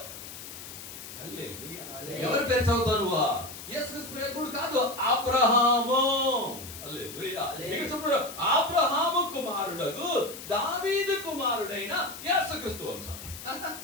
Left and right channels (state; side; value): noise; left; hiss, 12 dB below the sound